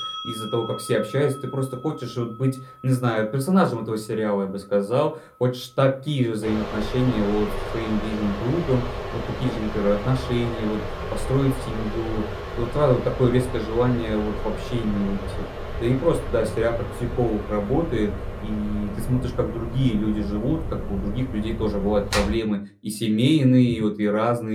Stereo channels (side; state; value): both; identical; correlation 1.00